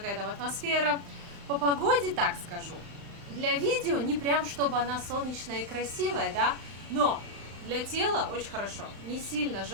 там атмосфера. По погоде, так скажу, для видео не прям чтобы она солнечная и красивая, да, но для тела очень хорошо. Не сильно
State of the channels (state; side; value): late; left; 35 ms